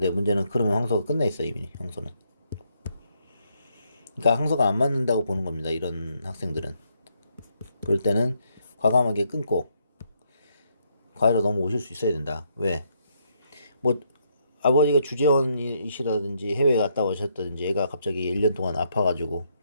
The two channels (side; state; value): both; inverted; correlation -0.74